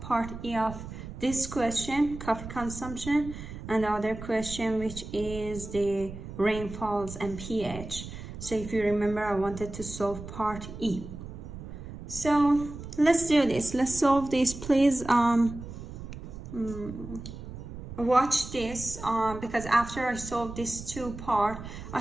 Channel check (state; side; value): noise; right; rumble, 11 dB below the sound